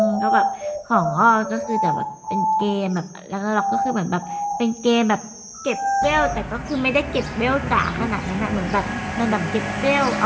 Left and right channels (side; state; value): both; identical; correlation 1.00